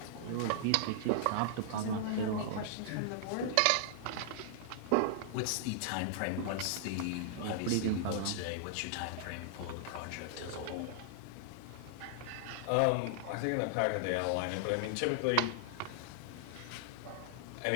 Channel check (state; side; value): different; both; correlation -0.01